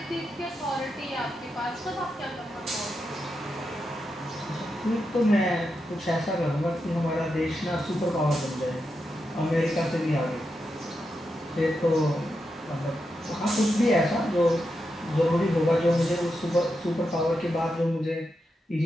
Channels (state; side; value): normal; both; correlation 0.86